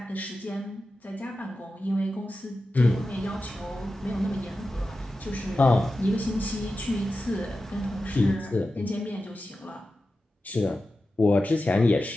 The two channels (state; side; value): normal; both; correlation 0.92